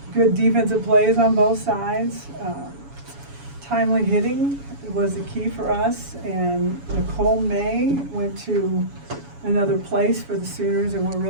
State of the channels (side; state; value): left; late; 7.1 ms